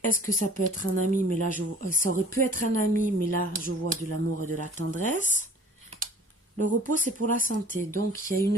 est-ce que ça peut être un ami, mais là, ça aurait pu être un ami, mais là, je vois de l'amour et de la tendresse. Le repos, c'est pour la santé. Donc, il y a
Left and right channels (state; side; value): normal; both; correlation 0.48